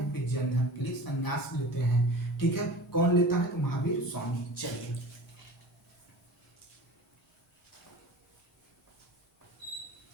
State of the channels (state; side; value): normal; both; correlation 0.37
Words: फिर जैन धर्म के लिए संन्यास लेते हैं, ठीक है। कौन लेता है, तो महावीर स्वामी। चलिए